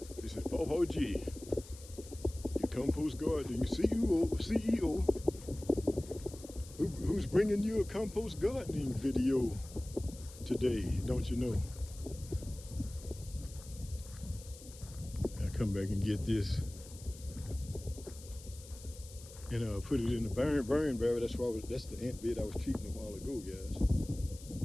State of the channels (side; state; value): left; noise; hiss, 18 dB below the sound